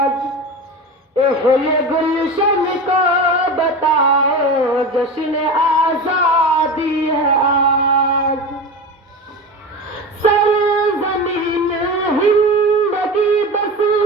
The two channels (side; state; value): both; normal; correlation 0.27